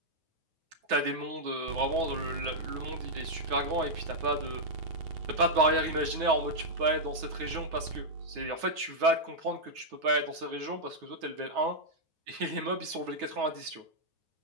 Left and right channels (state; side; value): late; left; 9.4 ms